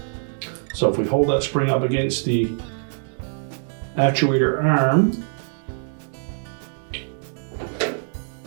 So if we hold that spring up against the actuator arm,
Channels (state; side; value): silent; left; digital silence